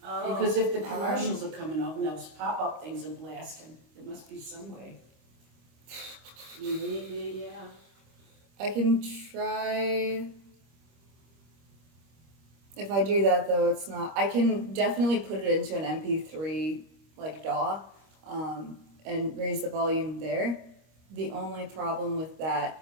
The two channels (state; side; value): late; left; 25 ms